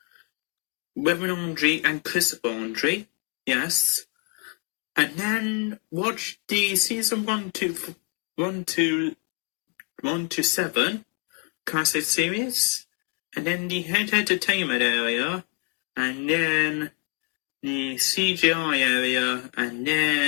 Reverend Andre and Christopher Andre. Yes. And then watch the season 1 to 7 classic series, and then the head entertainment area, and then the CGI area, and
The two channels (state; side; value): quieter; right; 30.5 dB